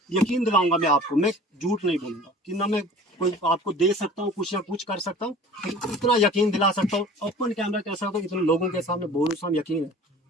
यकीन दिलाऊंगा मैं आपको, मैं झूठ नहीं बोलूंगा कि ना मैं कोई आपको दे सकता हूँ कुछ या कुछ कर सकता हूँ, इतना यकीन दिला सकता हूँ, ओपन कैमरा कह सकता हूँ, इतने लोगों के सामने बोलूँ यकीन है।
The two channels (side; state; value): both; normal; correlation 0.44